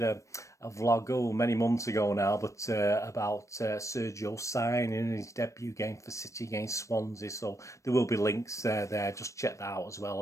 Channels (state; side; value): late; right; 0.15 ms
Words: a vlog many months ago now, but about Sergio signing his debut game for City against Swansea. So there will be links there. Just check that out as